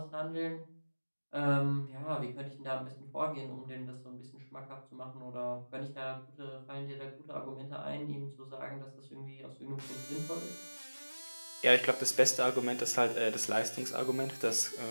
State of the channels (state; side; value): inverted; both; correlation -1.00